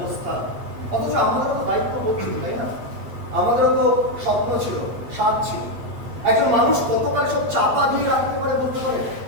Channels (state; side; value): late; left; 8.5 ms